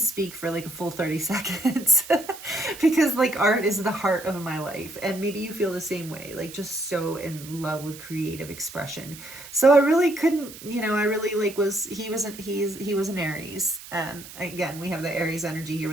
for like a full 30 seconds because like art is the heart of my life. And maybe you feel the same way, like just so in love with creative expression. So I really couldn't, I really like he was an Aries. And again, we have the Aries energy here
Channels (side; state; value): right; noise; hiss, 15 dB below the sound